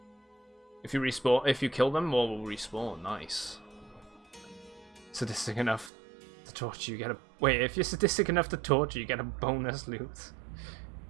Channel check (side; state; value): left; drops out; at 5.9 s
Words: If you respawn, if you kill them, more will respawn. Nice. Sadistic enough to torture, you get a. Wait, if you're sadistic enough to torture, you get a bonus loot.